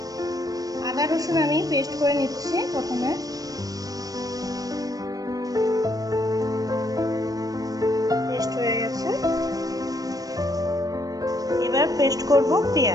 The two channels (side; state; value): left; late; 0.18 ms